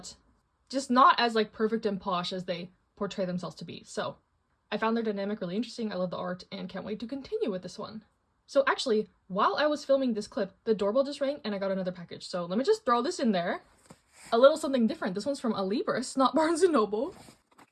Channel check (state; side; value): identical; both; correlation 1.00